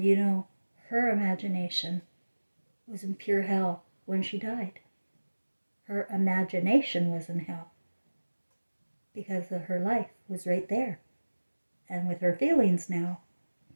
you know, her imagination was in pure hell when she died. Her imagination was in hell because of her life was right there. And with her feelings now,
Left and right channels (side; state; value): both; inverted; correlation -1.00